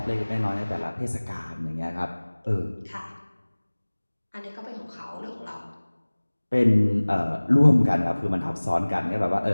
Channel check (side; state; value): both; inverted; correlation -1.00